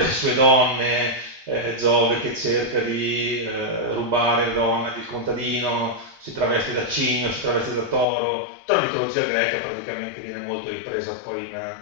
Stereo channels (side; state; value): right; drops out; at 8.1 s